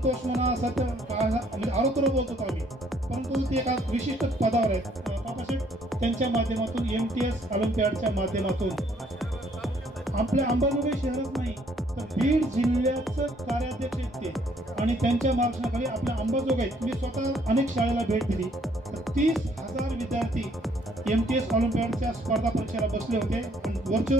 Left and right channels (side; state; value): both; normal; correlation 0.64